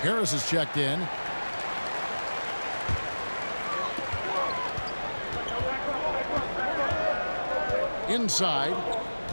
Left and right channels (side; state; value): both; inverted; correlation -1.00